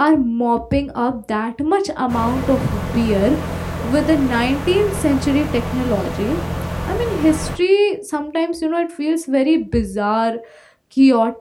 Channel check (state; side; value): identical; both; correlation 1.00